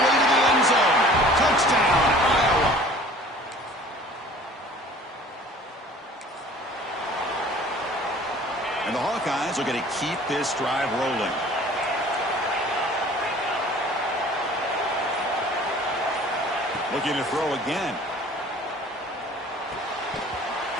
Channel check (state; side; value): normal; both; correlation 0.48